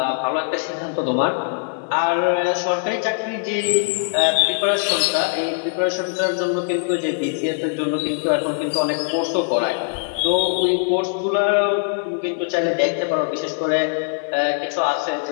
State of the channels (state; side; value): silent; right; digital silence